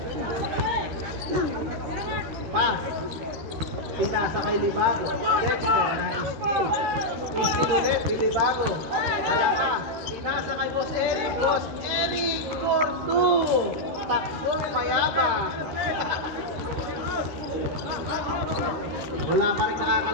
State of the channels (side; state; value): left; late; 13 ms